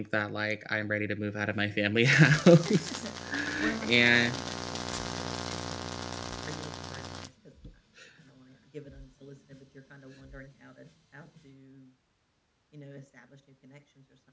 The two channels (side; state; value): both; identical; correlation 1.00